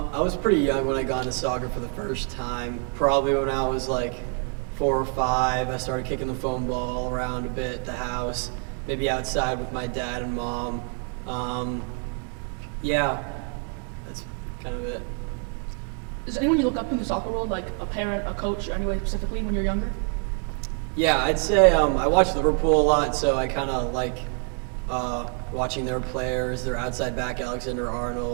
was pretty young when I got into soccer for the first time. Probably when I was like 4 or 5. I started kicking the foam ball around a bit at the house, maybe outside with my dad and mom. Yeah, that's kind of it. Is there anyone you look up to in the soccer world, like a parent, a coach, or anyway specifically when you're younger? Yeah, I'd say I watch Liverpool a lot, so I kind of like watching their players. Their outside back, Alexander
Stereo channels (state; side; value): quieter; left; 39.5 dB